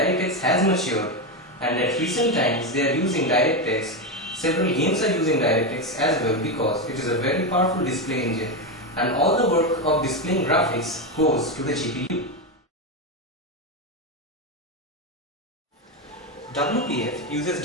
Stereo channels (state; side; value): normal; both; correlation 0.11